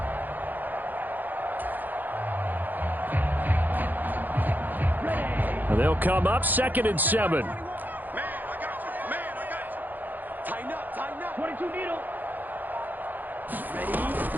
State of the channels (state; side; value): late; left; 0.085 ms